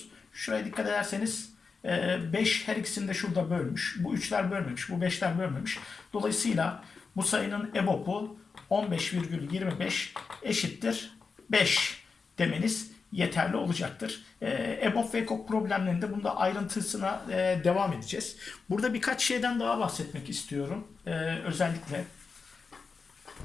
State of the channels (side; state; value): right; quieter; 4.9 dB